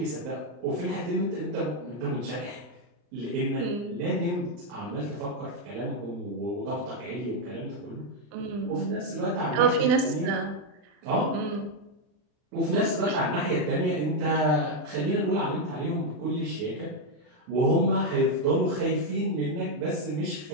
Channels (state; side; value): late; left; 40 ms